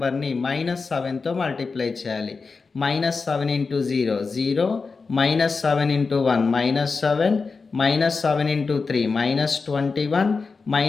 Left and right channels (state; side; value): quieter; right; 4.5 dB